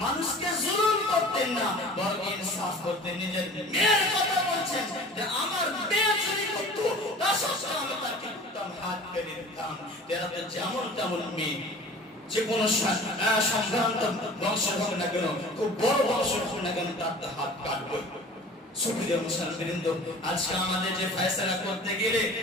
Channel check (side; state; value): both; normal; correlation 0.43